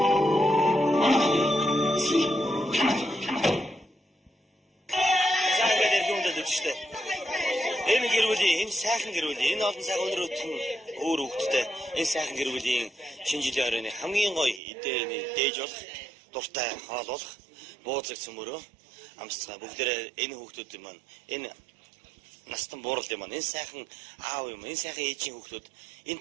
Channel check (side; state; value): left; drops out; at 14.6 s